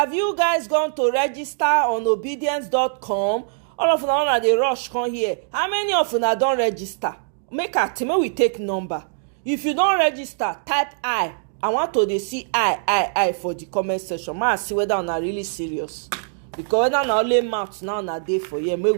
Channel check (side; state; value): left; silent; digital silence